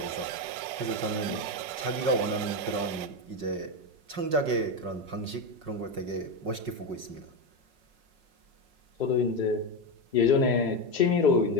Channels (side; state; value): left; late; 5.4 ms